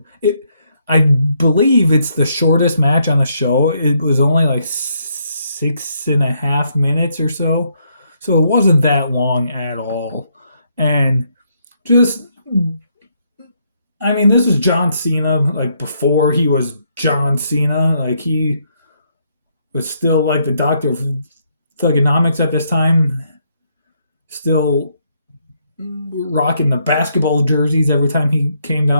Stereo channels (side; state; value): both; inverted; correlation -0.74